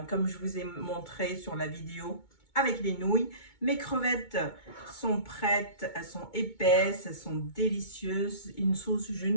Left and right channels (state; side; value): late; right; 2.2 ms